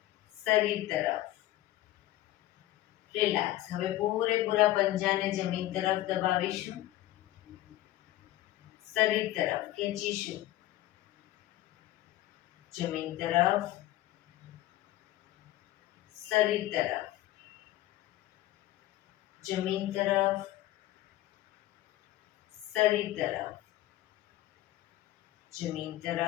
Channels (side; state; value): right; quieter; 15.4 dB